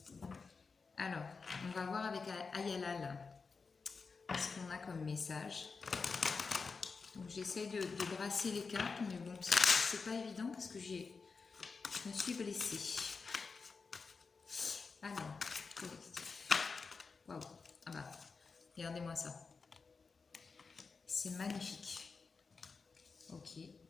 Alors, on va voir avec Ayalal ce qu'on a comme message. Donc j'essaye de brasser les cartes, mais bon, c'est pas évident parce que je me suis blessée. Alors, collectif. Waouh, ah bah, regardez-moi ça. C'est magnifique. Ok,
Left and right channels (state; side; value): quieter; right; 4.7 dB